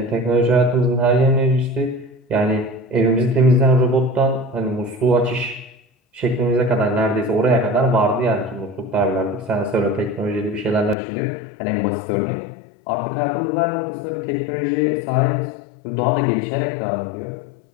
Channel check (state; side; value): drops out; right; at 11.0 s